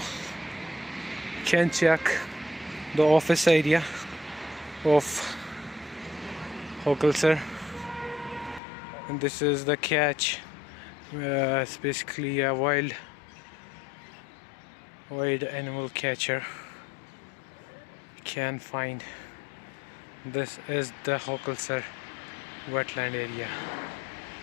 You can check the office area of Hokulsar, and this is the catch. It's basically a wild animal catcher. You can find this is the Hokulsar wetland area,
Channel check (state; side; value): drops out; right; at 8.6 s